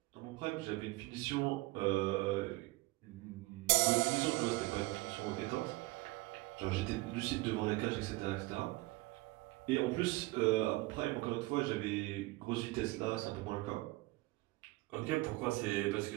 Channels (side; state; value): left; quieter; 21.4 dB